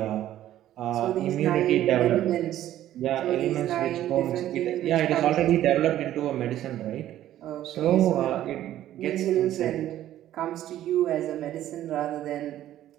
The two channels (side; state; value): left; quieter; 12.8 dB